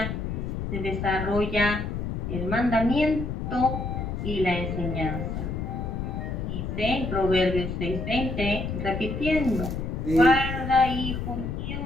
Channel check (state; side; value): noise; left; rumble, 3 dB below the sound